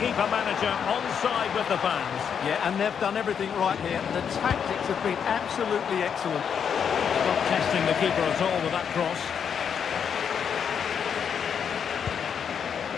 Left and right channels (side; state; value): right; quieter; 7.5 dB